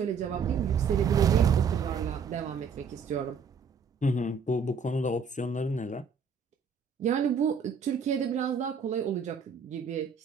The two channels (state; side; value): quieter; left; 5.7 dB